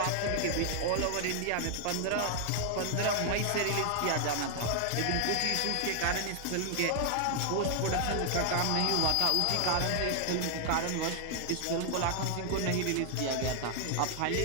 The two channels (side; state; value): both; different; correlation 0.00